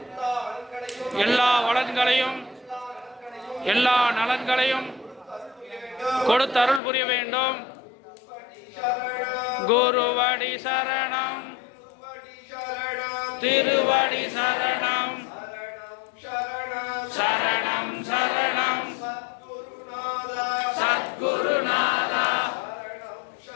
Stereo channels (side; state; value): right; drops out; at 6.8 s